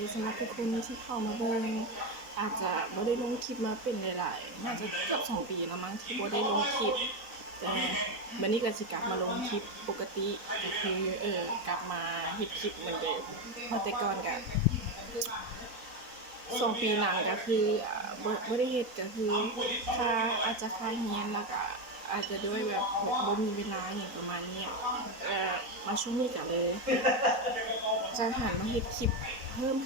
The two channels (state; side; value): late; left; 4.0 ms